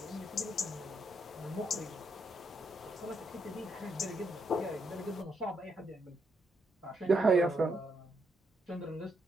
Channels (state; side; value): normal; both; correlation 0.78